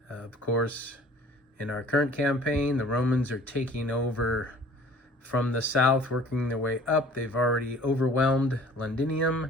Of course, in our current campaign, the Romans are taking over from the south, working their way up. They've already overwhelmed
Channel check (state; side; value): normal; both; correlation 0.50